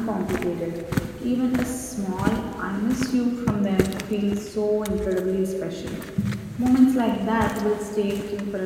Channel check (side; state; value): both; identical; correlation 1.00